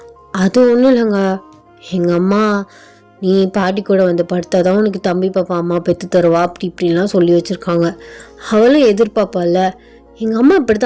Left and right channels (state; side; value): identical; both; correlation 1.00